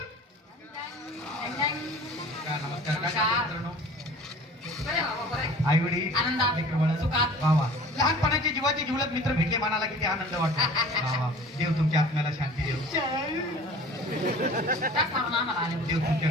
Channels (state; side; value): normal; both; correlation 0.45